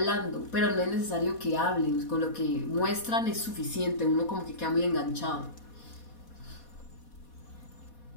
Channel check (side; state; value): right; late; 4.2 ms